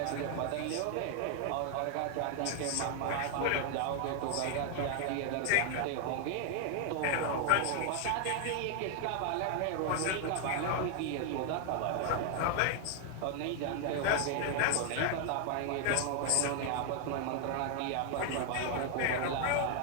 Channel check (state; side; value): different; both; correlation 0.00